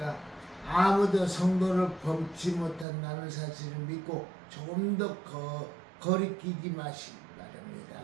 아무도 성도를 범치 못한다는 사실을 믿고 조금 더 거리끼지 마시기 바랍니다.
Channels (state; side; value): drops out; left; at 2.9 s